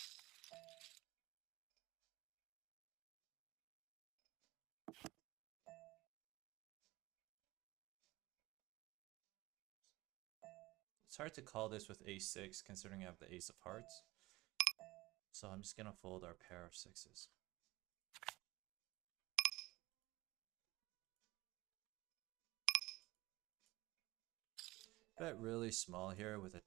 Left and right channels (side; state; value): left; quieter; 19.9 dB